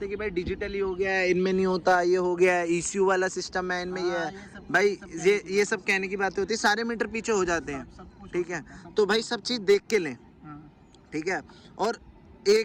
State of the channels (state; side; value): identical; both; correlation 1.00